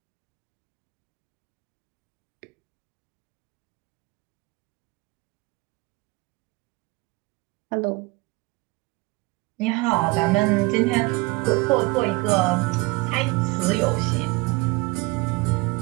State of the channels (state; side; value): quieter; left; 23.9 dB